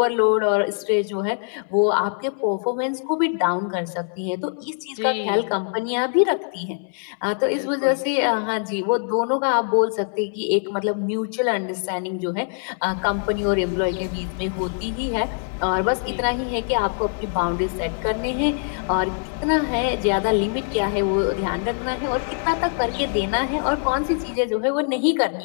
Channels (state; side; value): silent; right; 63 dB below the other